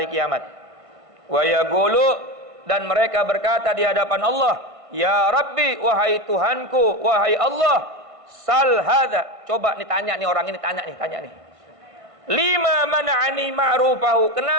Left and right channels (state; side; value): late; left; 1.5 ms